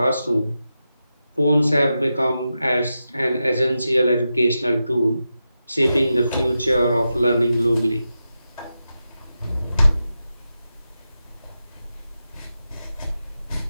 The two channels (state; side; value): inverted; both; correlation -0.90